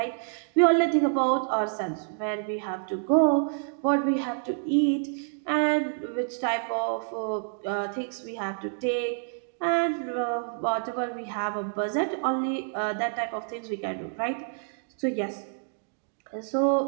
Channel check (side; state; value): left; silent; digital silence